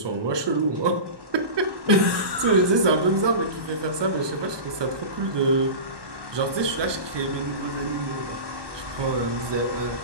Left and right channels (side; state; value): left; late; 1.2 ms